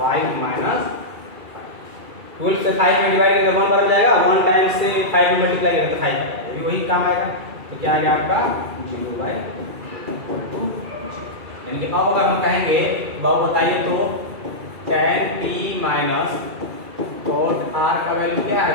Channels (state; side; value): late; left; 2.3 ms